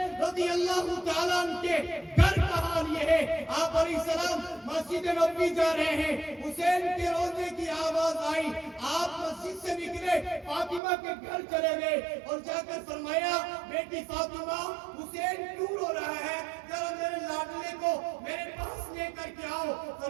رضی اللہ تعالیٰ عنہ کے گھر کا حال یہ ہے، آپ علیہ السلام مسجد نبوی جا رہے ہیں، حسین کے روزے کی آواز آئی، آپ مسجد سے نکلے، فاطمہ کے گھر چلے گئے اور جا کر فرمایا بیٹی فاطمہ، حسین کیوں رو رہا ہے؟ ذرا میرے لاڈلے کو میرے پاس لے کر کے آؤ۔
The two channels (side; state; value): left; drops out; at 10.8 s